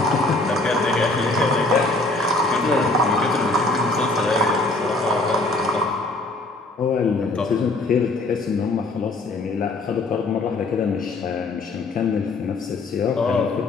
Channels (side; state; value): right; quieter; 3.0 dB